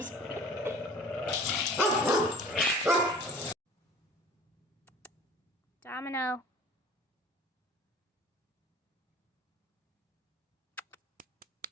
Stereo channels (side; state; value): both; normal; correlation 0.47